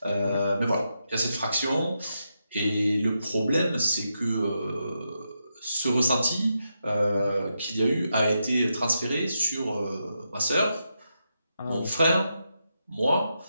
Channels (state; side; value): inverted; both; correlation -0.85